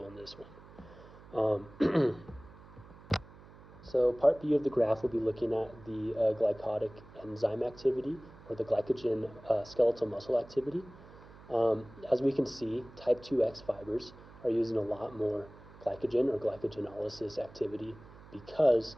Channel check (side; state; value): right; noise; hum, 20 dB below the sound